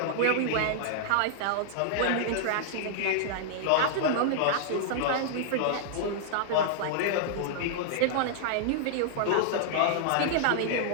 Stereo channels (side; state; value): both; different; correlation -0.01